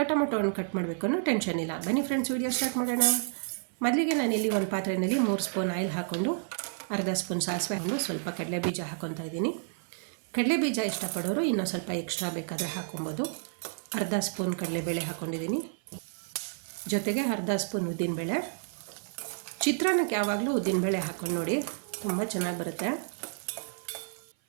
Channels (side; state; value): left; silent; 55 dB below the other